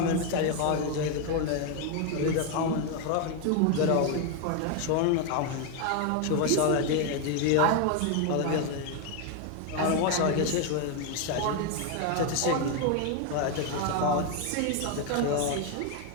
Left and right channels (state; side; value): different; both; correlation 0.01